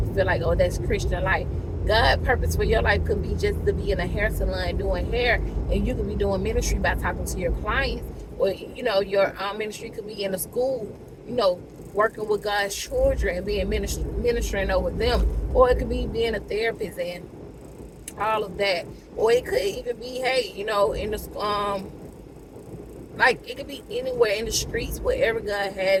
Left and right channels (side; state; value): both; identical; correlation 1.00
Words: feel like, oh, that's Christian life. God's purpose for your life could be just to be in a hair salon doing hair, and you could be doing ministry by talking to your clients. Or your ministry could be in a school, working with God's children and being ministering over them. Or it could be being a therapist and all of that. Or it could even be, hey, in the like it could be anywhere in the streets, wherever God